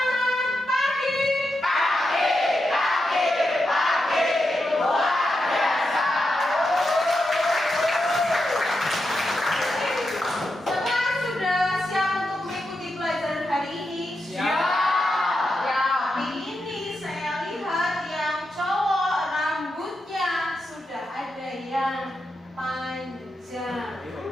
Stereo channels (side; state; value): both; normal; correlation 0.87